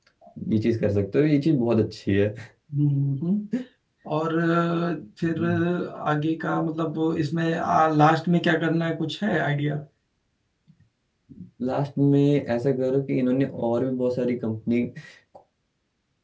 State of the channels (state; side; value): identical; both; correlation 1.00